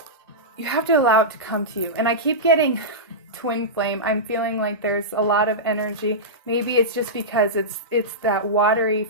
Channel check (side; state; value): both; normal; correlation -0.14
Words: You have to allow it to come to you. And I keep getting twin flame. I'm feeling like there's a lot of energy. Maybe it's just because it's that watery